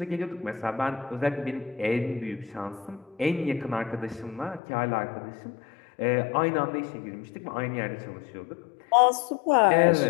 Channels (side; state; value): right; drops out; at 4.6 s